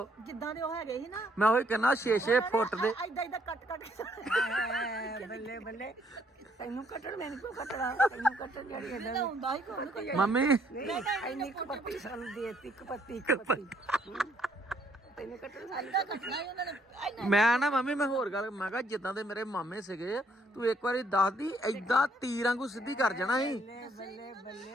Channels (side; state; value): both; normal; correlation 0.68